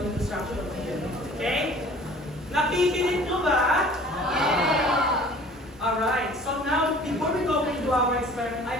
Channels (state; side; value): normal; both; correlation 0.49